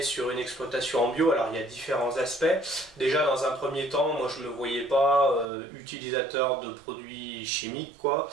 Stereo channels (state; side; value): drops out; left; at 5.5 s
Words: sur une exploitation en bio, alors il y a différents aspects. Déjà, dans un premier temps, moi je me voyais pas utilisateur de produits chimiques, quoi.